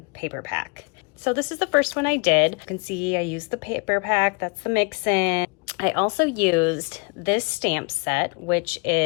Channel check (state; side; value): quieter; right; 32.3 dB